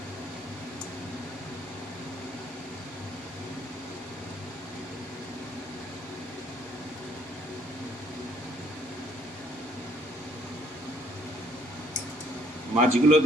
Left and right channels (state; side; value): normal; both; correlation 0.64